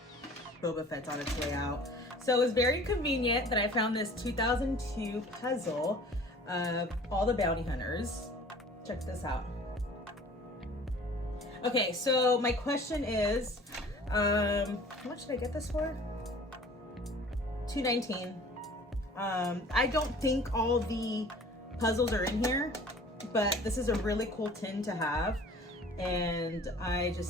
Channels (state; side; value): normal; both; correlation 0.48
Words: Boba Fett's on its way out. So it was very convenient that I found this 2002 puzzle of all the bounty hunters. Check this out. Okay, so my question is, how much did I get this for? $2.19. I don't think all the puzzles are in here, but this is a really cool tin to have, and I